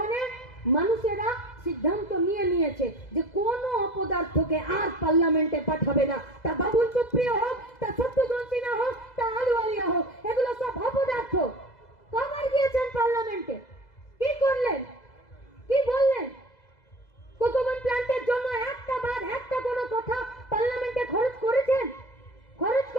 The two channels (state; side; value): late; right; 2.0 ms